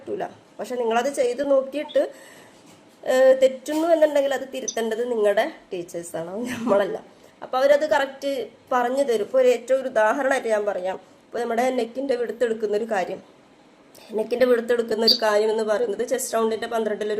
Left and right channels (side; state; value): both; identical; correlation 1.00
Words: പക്ഷെ നിങ്ങളത് ചെയ്ത് നോക്കിയിട്ട് തെറ്റുന്നു എന്നുണ്ടെങ്കിൽ അത് തിരുത്തേണ്ടത് നിങ്ങളുടെ ടീച്ചേഴ്സാണ്, നമ്മളല്ല. അപ്പോൾ അവരത് കറക്റ്റ് പറഞ്ഞു തരും. ഇപ്പോൾ ഏറ്റവും ഒരു ഉദാഹരണമായിട്ട് ഞാൻ പറയാം. ഇപ്പോൾ നമ്മുടെ നെക്കിൻ്റെ വിടുത്തെടുക്കുന്ന ഒരു കാര്യം എന്ന് പറയുന്നത് ചെസ്റ്റ് റൗണ്ടിൻ്റെ